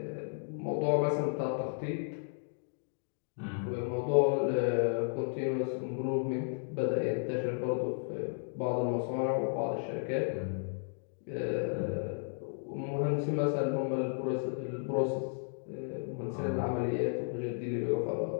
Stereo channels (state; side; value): silent; right; digital silence